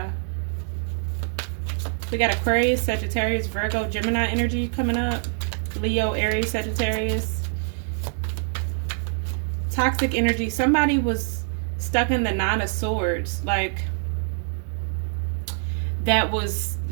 We got Aquarius, Sagittarius, Virgo, Gemini energy coming up. Leo, Aries, Sagittarius. Toxic energy. Somebody was stuck in the Nine of Swords. Like, that was,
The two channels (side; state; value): left; silent; 60 dB below the other